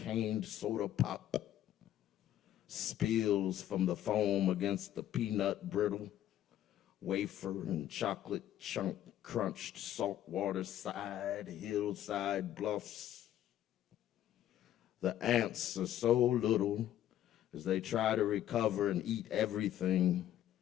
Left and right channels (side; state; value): right; quieter; 12.0 dB